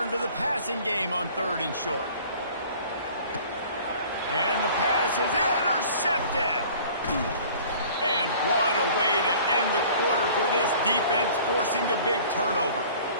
to the passing game on third and short. And the pass is intercepted. And what a way to end the quarter for this defense, forcing the big turnover.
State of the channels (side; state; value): both; inverted; correlation -0.48